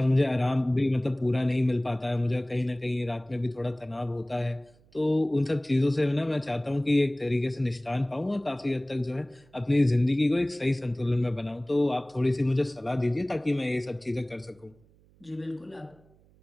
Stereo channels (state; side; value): noise; right; hum, 30 dB below the sound